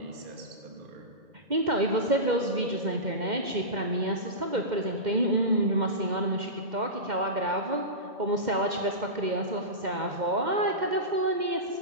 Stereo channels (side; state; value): left; late; 2.1 ms